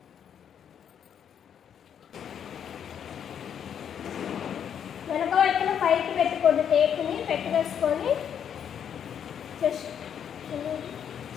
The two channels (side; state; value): right; quieter; 8.5 dB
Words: వెనక వైపున పైకి పెట్టుకోండి, టేప్ని పెట్టేసుకొని